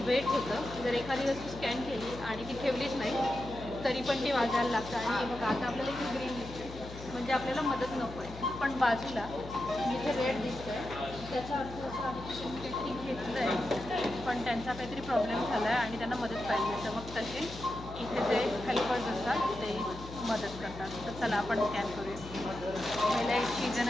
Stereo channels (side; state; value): left; noise; hum, 13 dB below the sound